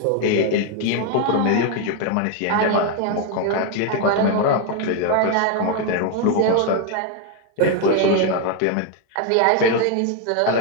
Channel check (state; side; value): different; both; correlation 0.01